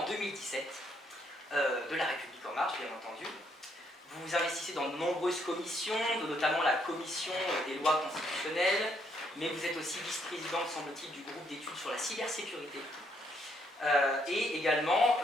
2017 de La République En Marche, bien entendu. Vous vous investissez dans de nombreuses commissions, notamment la commission des lois constitutionnelles, mais vous êtes aussi vice-présidente, semble-t-il, du groupe d'études sur la cybersécurité. Et également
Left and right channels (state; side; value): normal; both; correlation 0.72